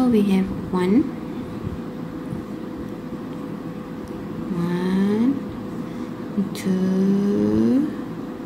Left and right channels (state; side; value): noise; left; hum, 25 dB below the sound